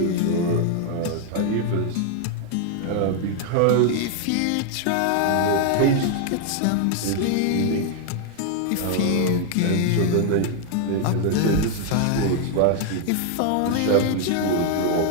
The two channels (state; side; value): different; both; correlation 0.00